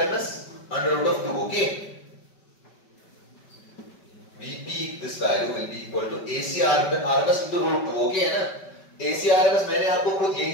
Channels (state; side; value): late; right; 5.2 ms